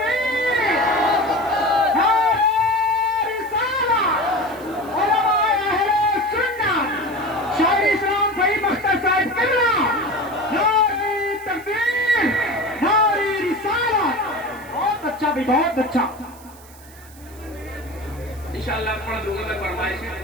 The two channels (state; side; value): noise; right; hiss, 23 dB below the sound